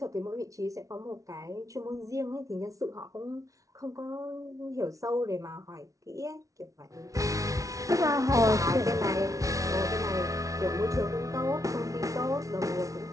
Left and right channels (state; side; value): late; left; 0.16 ms